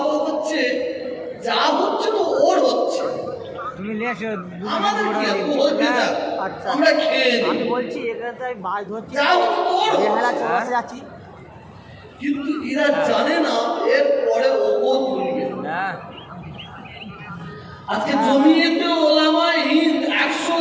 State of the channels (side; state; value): both; identical; correlation 1.00